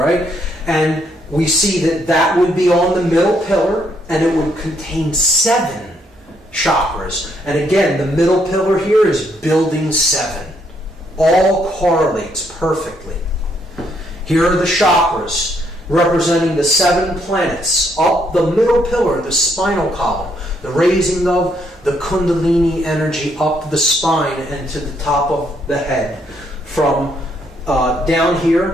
And we see that would be on the middle pillar, and it would contain 7 chakras. And again, the middle pillar here is building 7. All correlates perfectly. Here are the chakras, representing the 7 planets. Up the middle pillar, the spinal column, the raising of the Kundalini energy up the spine and to the top of the head. From down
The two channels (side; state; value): both; normal; correlation 0.72